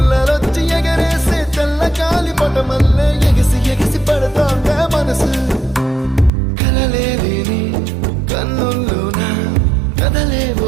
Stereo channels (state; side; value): drops out; left; at 6.3 s